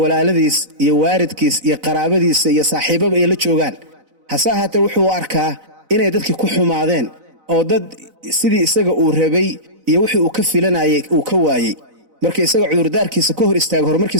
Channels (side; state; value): left; late; 4.0 ms